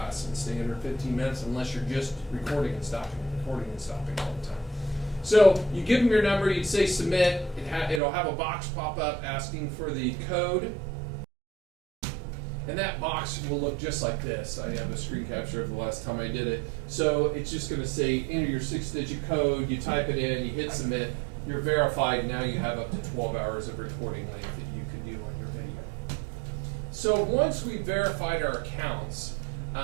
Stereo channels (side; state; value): left; drops out; at 8.0 s